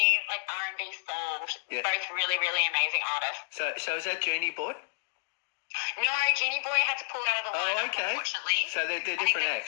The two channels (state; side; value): silent; right; digital silence